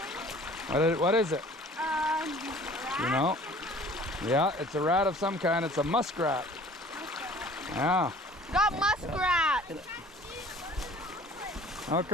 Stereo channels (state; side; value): normal; both; correlation 0.49